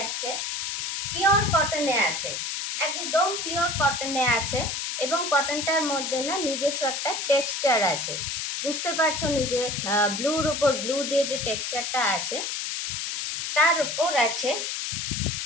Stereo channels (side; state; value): left; noise; hiss, 3 dB below the sound